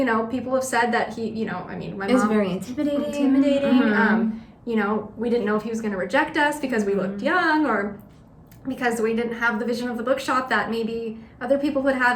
people have said that he, my Is mom very intimidating. We didn't know if he was going to reject us because we looked young, or because we didn't have the vision of the bookshop that maybe other people would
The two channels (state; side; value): identical; both; correlation 1.00